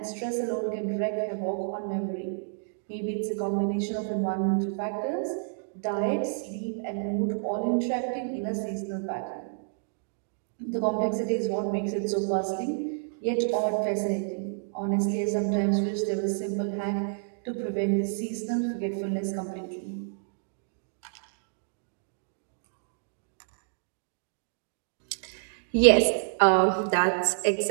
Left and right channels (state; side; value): silent; left; digital silence